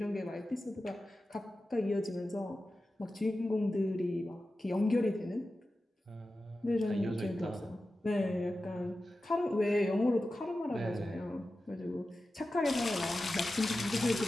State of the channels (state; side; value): normal; both; correlation 0.93